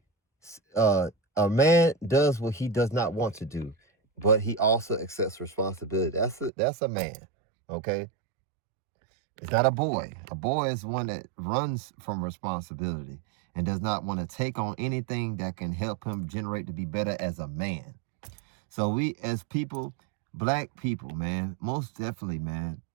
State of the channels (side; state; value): left; drops out; at 6.5 s